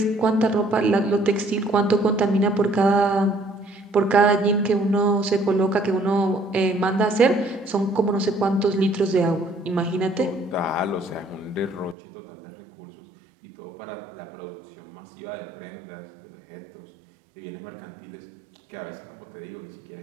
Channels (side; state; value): left; drops out; at 12.0 s